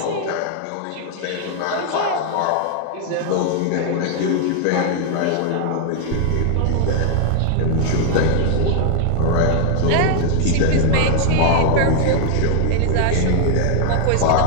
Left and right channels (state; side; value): different; both; correlation 0.00